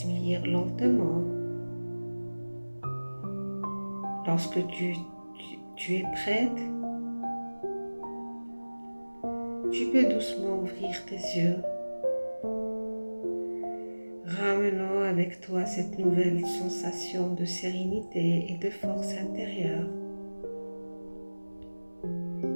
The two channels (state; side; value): inverted; both; correlation -1.00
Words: lentement. Lorsque tu es prête, tu peux doucement ouvrir tes yeux, ramenant avec toi cette nouvelle sensation de sérénité et de force intérieure.